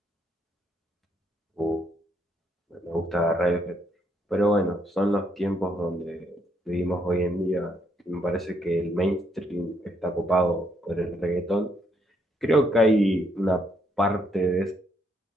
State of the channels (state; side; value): normal; both; correlation 0.73